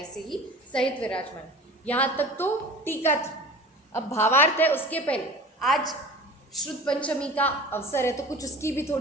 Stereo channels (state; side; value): normal; both; correlation 0.39